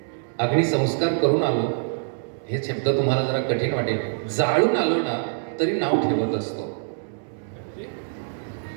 अग्निसंस्कार करून आलो, हे शब्द तुम्हाला जरा कठीण वाटेल, जाळून आलो ना तरी नाव ठेवत असतो.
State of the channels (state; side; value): silent; left; digital silence